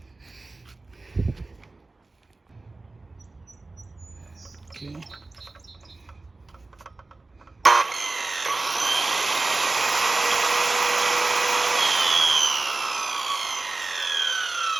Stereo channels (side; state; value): left; quieter; 3.3 dB